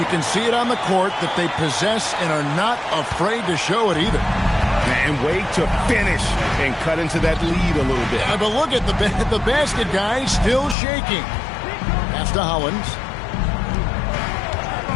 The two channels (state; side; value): drops out; right; at 10.8 s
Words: can see it on the court that they possess and are not afraid to show it either. And wait to finish and cut into that lead a little bit. But look at the basket guy still shaking. Pass to Hollins.